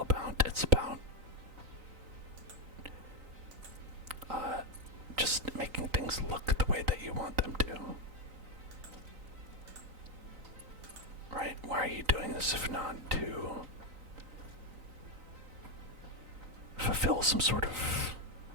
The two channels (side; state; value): left; late; 3.9 ms